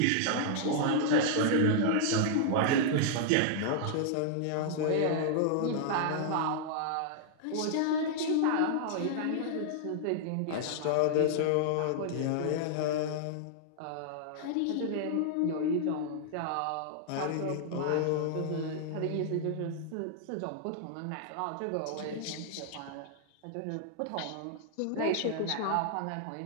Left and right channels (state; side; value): different; both; correlation -0.01